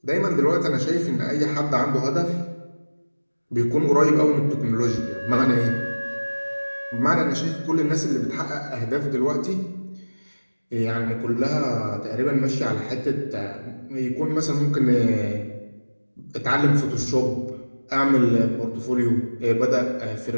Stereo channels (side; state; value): both; inverted; correlation -1.00